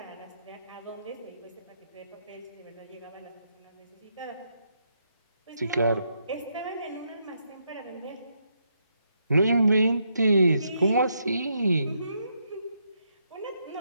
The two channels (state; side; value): inverted; both; correlation -0.78